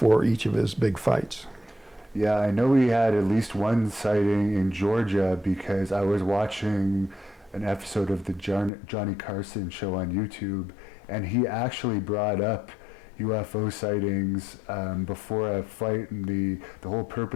each of his big fights. Yeah, I know he had at least one sighting in Georgia because I was watching an episode of the Johnny Carson show on YouTube, and he actually brought up UFO sightings before a fight, and the whole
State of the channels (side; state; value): right; drops out; at 8.7 s